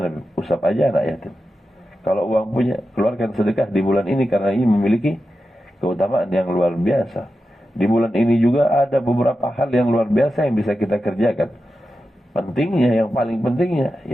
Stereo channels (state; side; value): normal; both; correlation 0.91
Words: Bib? Usap aja anak yatim. Kalau uang punya, keluarkan sedekah di bulan ini, karena ini memiliki keutamaan yang luar biasa. Di bulan ini juga ada beberapa hal yang luar biasa yang bisa kita kerjakan. Pentingnya, yang paling pentingnya,